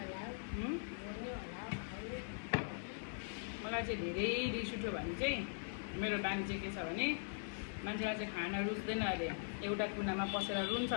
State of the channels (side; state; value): right; silent; digital silence